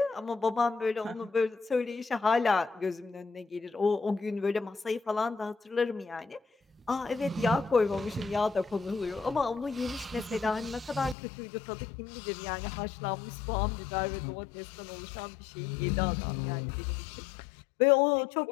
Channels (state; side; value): drops out; right; at 11.2 s